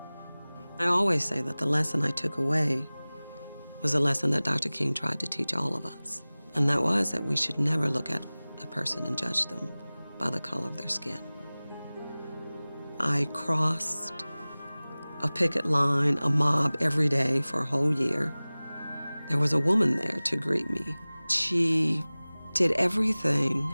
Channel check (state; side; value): inverted; both; correlation -0.99